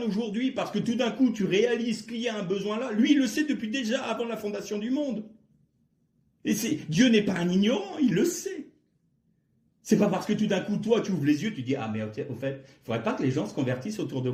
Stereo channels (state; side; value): identical; both; correlation 1.00